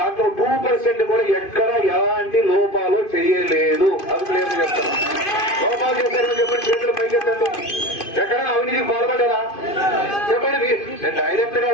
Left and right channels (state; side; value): late; right; 2.5 ms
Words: 2% కూడా ఎక్కడ ఎలాంటి లోపాలు చేయలేదు. అది క్లియర్ చెప్తాను. లోపాలు చేశారని చెప్పండి, చేతులు పైకెత్తండి. ఎక్కడైనా అవినీతికి పాల్పడ్డారా చెప్పండి. నేను డైరెక్ట్ గా